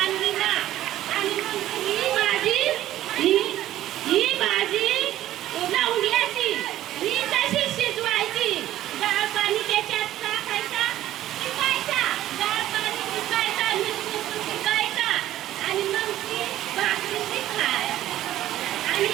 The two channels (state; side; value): quieter; left; 13.6 dB